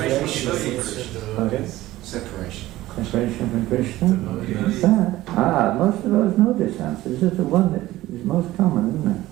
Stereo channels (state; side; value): quieter; left; 16.4 dB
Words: Separation. Separation from Krishna? That? Most of those know this answer. This is the one that is most common, isn't it?